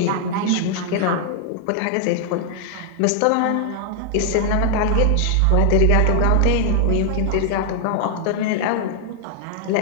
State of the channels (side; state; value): both; different; correlation 0.00